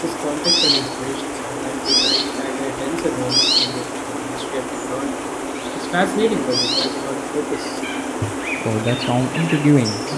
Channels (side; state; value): both; identical; correlation 1.00